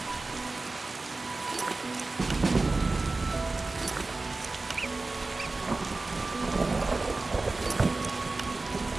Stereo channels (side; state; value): left; quieter; 3.4 dB